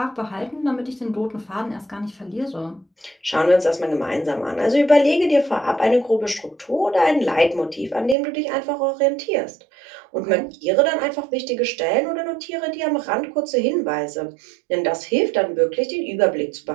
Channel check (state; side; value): drops out; left; at 8.2 s